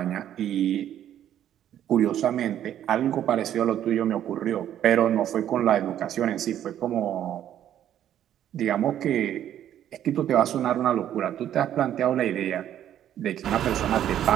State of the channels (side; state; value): left; quieter; 11.0 dB